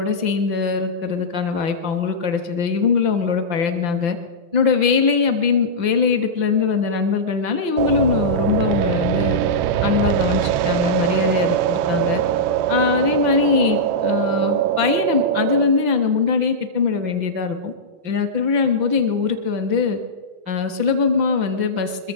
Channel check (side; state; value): left; late; 5.9 ms